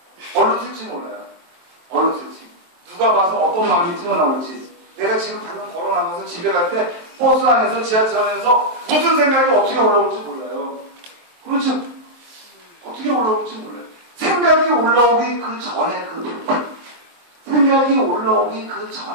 얼른 틀지 몰라요. 얼른 틀지. 누가 봐서 어떤 마음이 튀어나올지. 내가 지금 방금 걸어나가서 집에 갈 때 버스 안에서 지하철 안에서 무슨 생각이 어떻게 올라올지 몰라요. 그렇죠? 어떻게 올라올지 몰라요. 생각이 올라오기 그 전에 그 마음. 생각이 올라오기 그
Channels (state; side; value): late; left; 23 ms